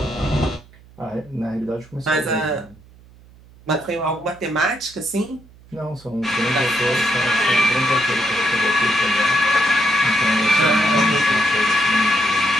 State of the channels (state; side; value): noise; right; hum, 25 dB below the sound